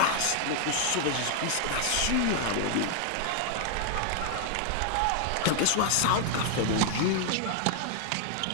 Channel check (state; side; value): different; both; correlation 0.00